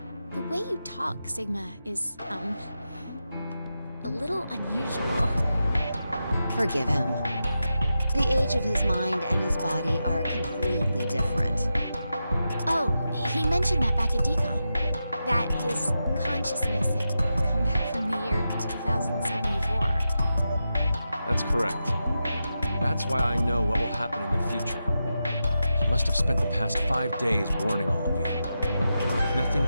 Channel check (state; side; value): inverted; both; correlation -0.89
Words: the way you talk, Sigma, is, a little unusual. Forgive him. The age of his mind and his body are completely different. Oh, he mentioned that back at DCOM. That his consciousness had come back from the year 2074. That's correct. That's why I know what will happen in the future. He must have spent the past 5 days warning all of you. If nothing